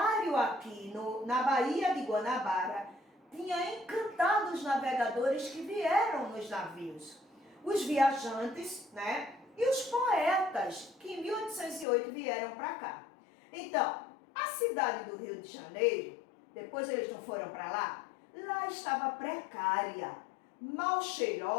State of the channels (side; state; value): right; drops out; at 11.9 s